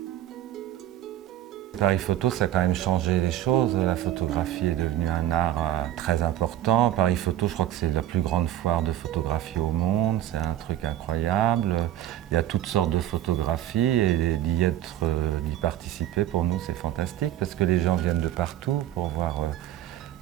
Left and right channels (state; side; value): quieter; left; 12.4 dB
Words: Paris Photo, ça a quand même changé les choses. La photographie est devenue un art très important. Paris Photo, je crois que c'est la plus grande foire de photographie au monde. C'est un truc incroyable. Il y a toutes sortes de photographies et d'y participer, pour nous, c'est fantastique parce que les gens viennent de partout pour